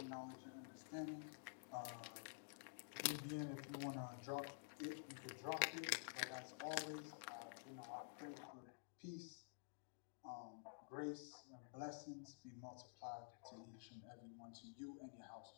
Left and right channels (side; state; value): right; silent; digital silence